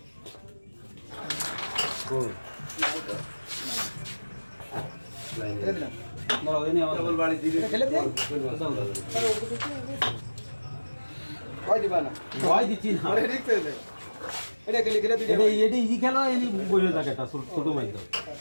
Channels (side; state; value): both; inverted; correlation -1.00